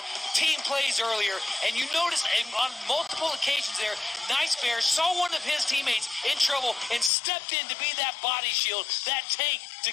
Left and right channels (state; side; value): drops out; right; at 7.1 s